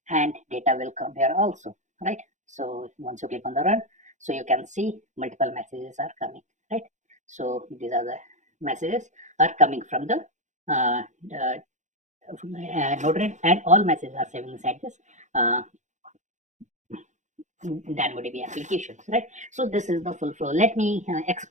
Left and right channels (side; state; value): left; late; 0.35 ms